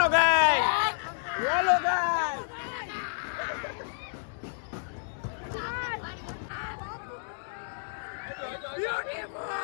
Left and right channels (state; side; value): silent; right; digital silence